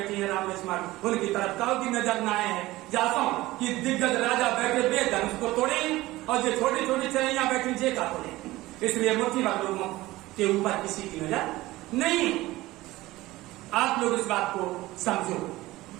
हैं, राम लक्ष्मण। उनकी तरफ काउ की नजर न आए हैं। जाता हूं कि दिग्गज राजा बैठे बेधनुष को तोड़े और जो छोटी छोटी चरैया बैठी जे का तोड़े। इसलिए मुट्ठी भर लोगों के ऊपर किसी की नजर नहीं। आप लोग इस बात को समझो,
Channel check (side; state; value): left; quieter; 18.2 dB